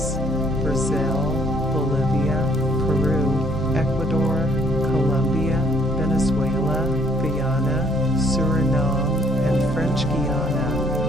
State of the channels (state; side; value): normal; both; correlation 0.65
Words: Brazil, Bolivia, Peru, Ecuador, Colombia, Venezuela, Guyana, Suriname, and French Guiana.